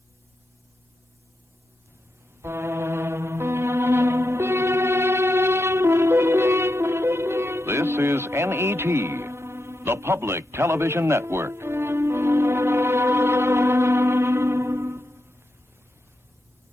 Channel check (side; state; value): both; normal; correlation 0.86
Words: This is NET, the Public Television Network.